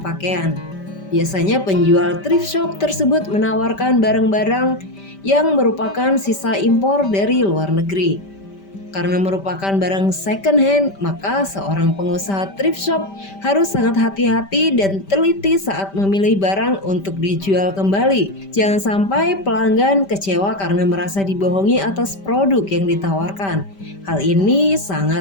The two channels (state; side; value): late; right; 5.1 ms